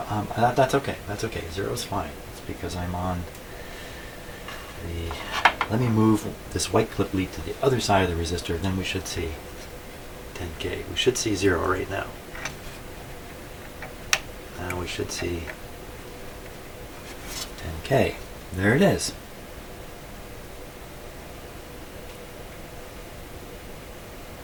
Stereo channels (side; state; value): both; identical; correlation 1.00